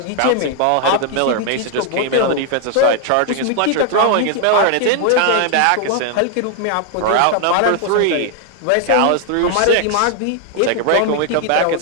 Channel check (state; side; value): different; both; correlation 0.00